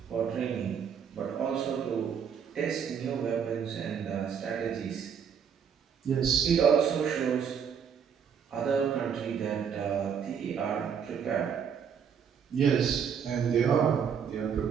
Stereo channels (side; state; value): left; quieter; 7.4 dB